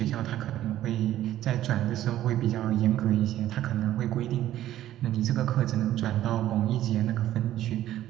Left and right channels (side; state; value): left; quieter; 13.1 dB